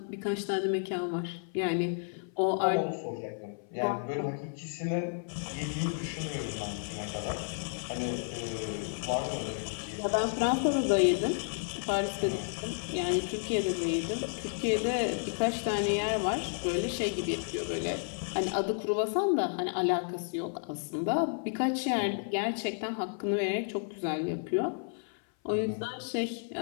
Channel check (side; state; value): right; silent; 57 dB below the other